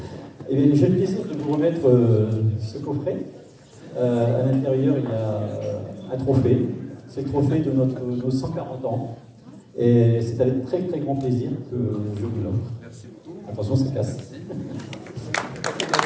Et bien, j'ai le plaisir de vous remettre ce coffret. À l'intérieur, il y a un trophée. C'est le trophée de nos 140 ans. Et c'est avec très très grand plaisir que je vous l'offre. Merci beaucoup. Attention, ça casse.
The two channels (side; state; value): both; identical; correlation 1.00